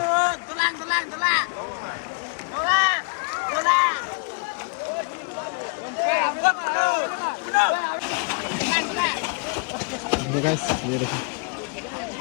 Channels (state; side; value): quieter; right; 35.9 dB